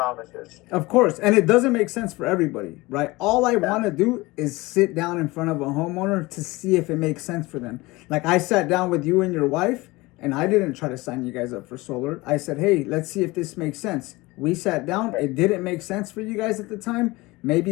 Of course, and it doesn't make sense for everybody, right? All I want to do is sit down in front of a homeowner to see if it makes sense for them. Like, I sat down with you and your wife, and I didn't try to sign you guys up for solar. I said, hey, let's see if this makes sense. We sat down. It didn't make sense for you guys at the time.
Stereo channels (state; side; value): quieter; right; 21.8 dB